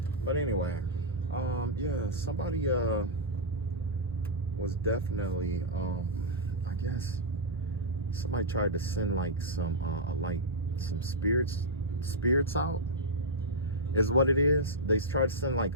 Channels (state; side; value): normal; both; correlation -0.07